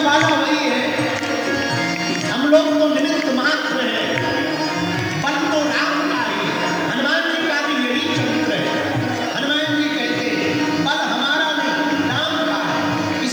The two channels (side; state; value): left; noise; hiss, 27 dB below the sound